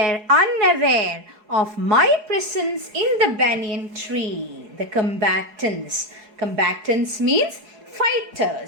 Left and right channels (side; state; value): left; late; 4.8 ms